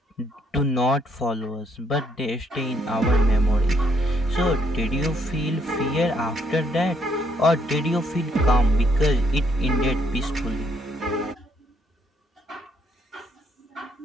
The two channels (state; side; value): normal; both; correlation 0.70